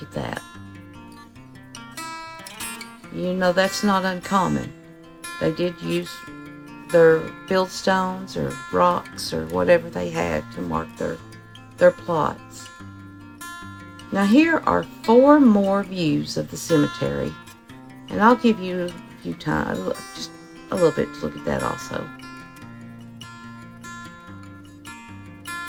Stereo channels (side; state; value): both; identical; correlation 1.00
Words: at that. You know that's not uncommon. They did use their fieldstones or rocks or whatever they had to mark their plots. Now here are 4 more views of the cemetery, and I'll give you a few times, just a little bit to look at that also.